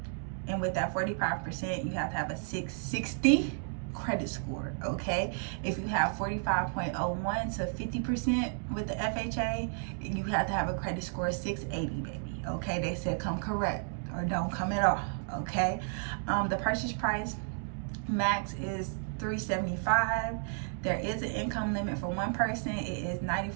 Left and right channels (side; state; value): left; silent; 56 dB below the other